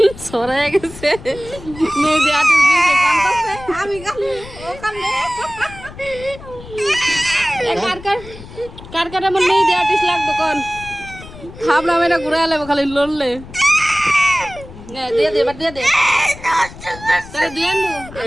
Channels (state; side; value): noise; left; rumble, 16 dB below the sound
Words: সরাই গেছে মেহেদি আর্টিস্ট দিয়েছে কান্দছে আমি কান্দে ও কান্দে কার কার আমার মেহেদি আর্টিস্ট লাগতো কোন খাবলাম এটা ঘুরে আলাম খালি লড়লে দিয়ে দে এবার দিয়ে দে তাহলে দিয়ে